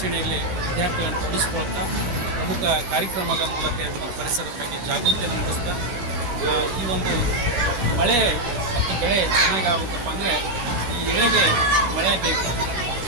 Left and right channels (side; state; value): left; late; 17 ms